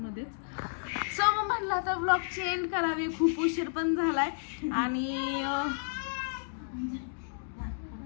सो मग म्हणलं आता ब्लॉगची एंड करावी, खूप उशीर पण झालाय. आणि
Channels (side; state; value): right; silent; digital silence